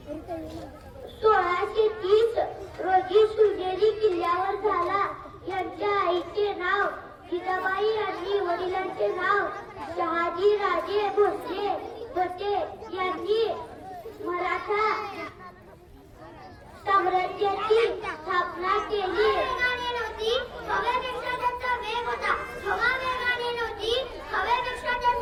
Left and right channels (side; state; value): both; identical; correlation 1.00